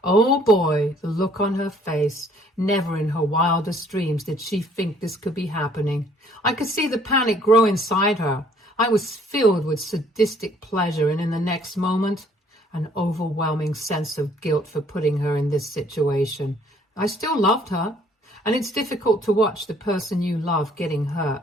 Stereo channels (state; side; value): normal; both; correlation 0.60